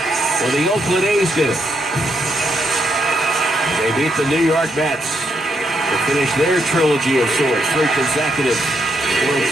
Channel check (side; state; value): both; normal; correlation 0.78